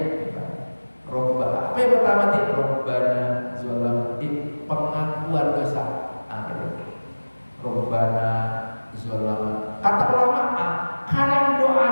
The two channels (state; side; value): inverted; both; correlation -1.00